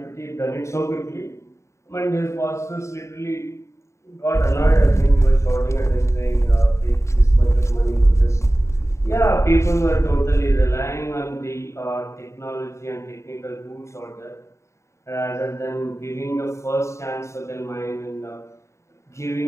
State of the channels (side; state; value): right; late; 0.14 ms